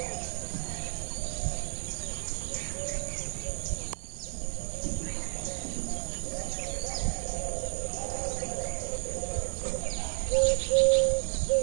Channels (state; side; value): silent; left; 57 dB below the other